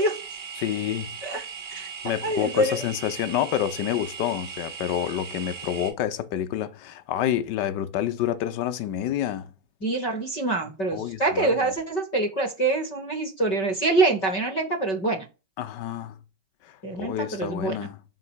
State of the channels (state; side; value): late; right; 5.2 ms